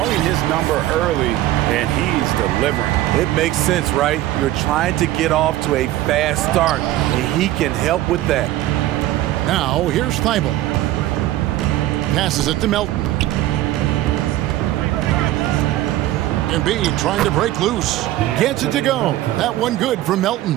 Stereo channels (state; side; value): quieter; left; 14.8 dB